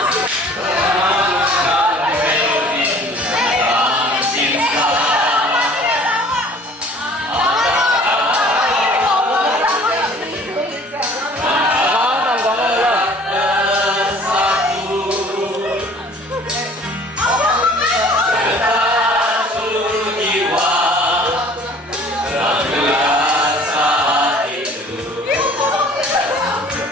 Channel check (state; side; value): normal; both; correlation 0.51